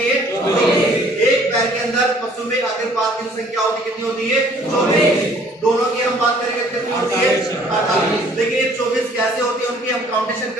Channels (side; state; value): both; normal; correlation 0.57